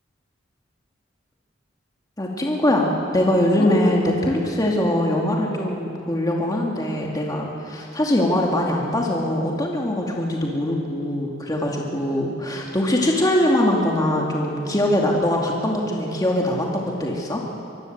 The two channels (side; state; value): both; normal; correlation 0.64